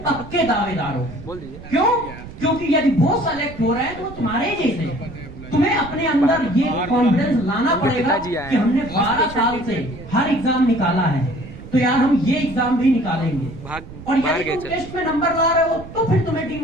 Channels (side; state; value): right; noise; rumble, 15 dB below the sound